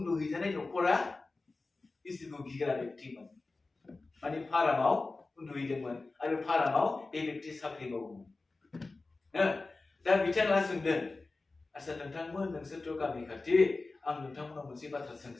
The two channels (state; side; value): quieter; right; 3.5 dB